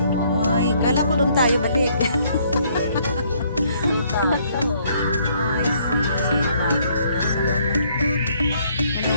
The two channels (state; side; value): inverted; both; correlation -0.66